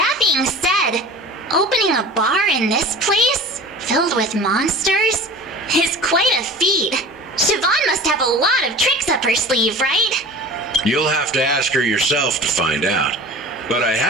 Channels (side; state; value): both; normal; correlation 0.38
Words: being said, opening a bar in this place, filled with monsters, is quite a feat. Siobhan must have a lot of tricks up her sleeve, right? You'll have to ask her yourself to find out. But I